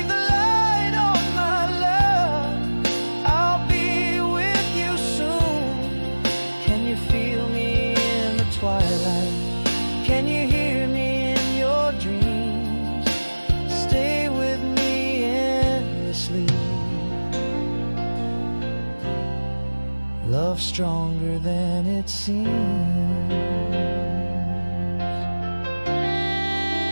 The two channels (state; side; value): inverted; both; correlation -1.00